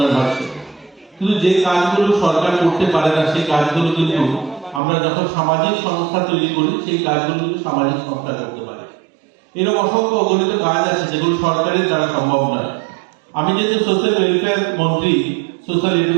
হচ্ছে। কিন্তু যে কাজগুলো সরকার করতে পারে না সেই কাজগুলো কিন্তু আমরা যখন সামাজিক সংস্থা তৈরি করি সেই কাজগুলো কিন্তু সামাজিক সংস্থা করতে পারে। এরকম অসংখ্য অগণিত কাজ আছে যেগুলো সরকারের দ্বারা সম্ভব নয়। আমি যেহেতু সোশ্যাল ওয়েলফেয়ার মন্ত্রী, সোশ্যাল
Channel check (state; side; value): drops out; left; at 4.8 s